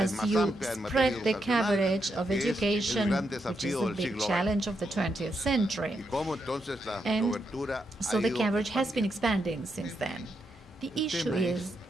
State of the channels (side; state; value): both; normal; correlation 0.82